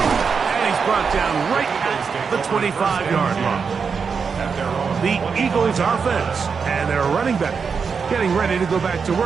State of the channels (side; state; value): left; quieter; 5.7 dB